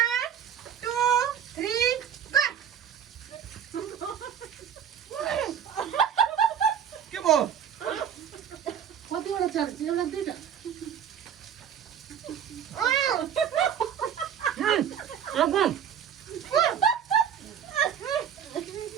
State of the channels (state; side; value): quieter; left; 8.7 dB